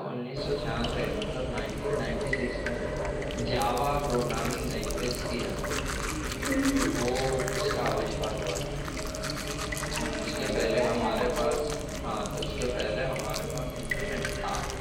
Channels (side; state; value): both; identical; correlation 1.00